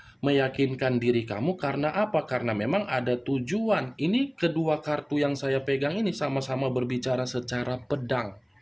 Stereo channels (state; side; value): identical; both; correlation 1.00